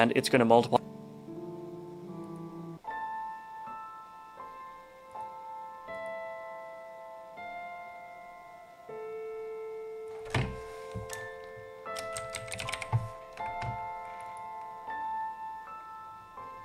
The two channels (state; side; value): identical; both; correlation 1.00